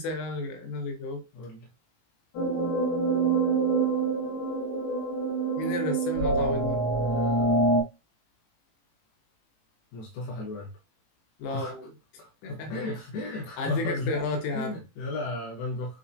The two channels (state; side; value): late; right; 18 ms